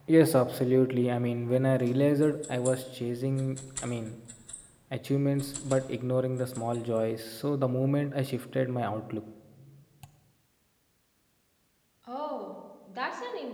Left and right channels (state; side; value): identical; both; correlation 1.00